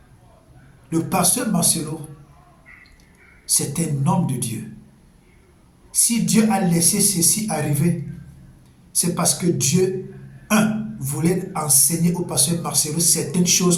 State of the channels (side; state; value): both; identical; correlation 1.00